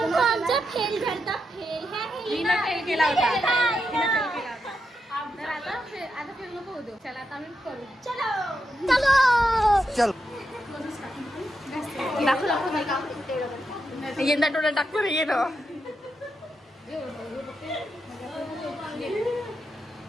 आमचा फेल झालता फेल फेल केला होता. तर आता फेल नको होतो. चला आता आम्ही करू. चलो चल यंदा टोला टाकतो रे येणं.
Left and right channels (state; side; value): normal; both; correlation 0.85